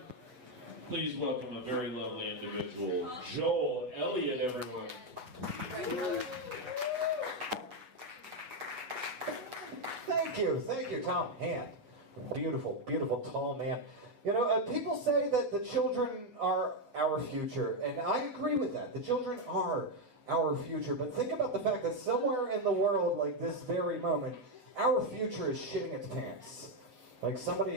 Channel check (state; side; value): late; left; 7.8 ms